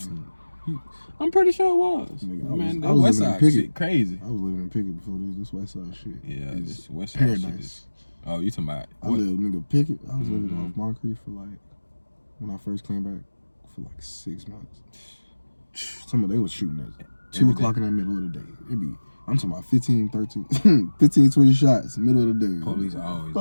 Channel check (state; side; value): inverted; both; correlation -1.00